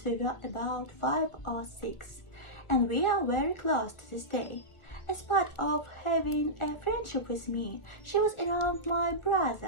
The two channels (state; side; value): late; right; 1.4 ms